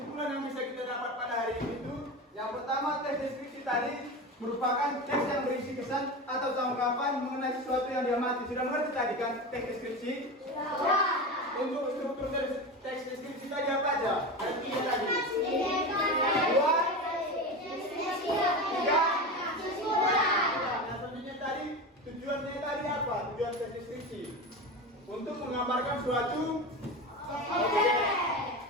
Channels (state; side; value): normal; both; correlation 0.24